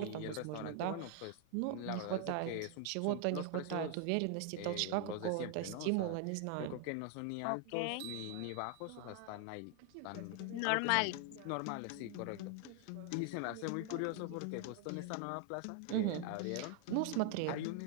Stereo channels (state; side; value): different; both; correlation 0.00